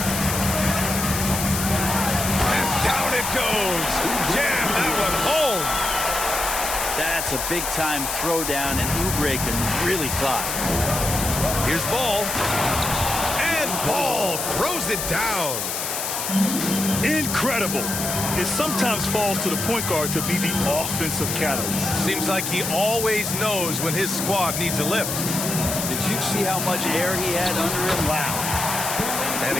And down it goes. Jam that one home. That's a big-time throwdown, and Oubre can really fly. Here's Ball. And Ball throws it down. Incredible. It sometimes falls to the point guard to be the offensive catalyst. Seems like he always knows when his squad needs a lift. Did you see how much air he had under him? Wow. And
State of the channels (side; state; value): left; noise; hiss, 3 dB below the sound